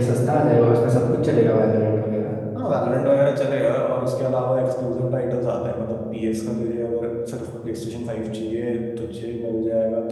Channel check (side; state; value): both; identical; correlation 1.00